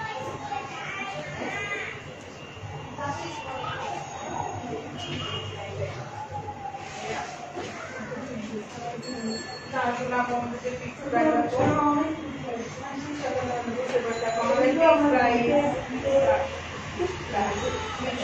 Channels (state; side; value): identical; both; correlation 1.00